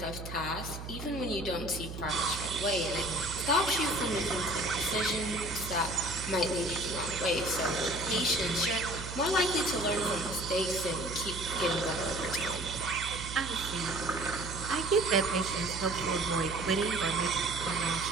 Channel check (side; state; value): right; noise; hum, 9 dB below the sound